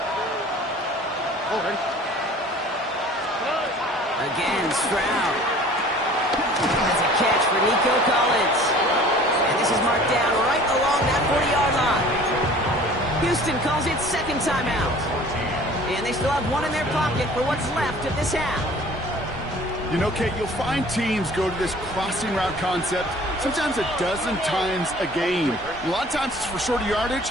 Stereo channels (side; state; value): both; normal; correlation 0.48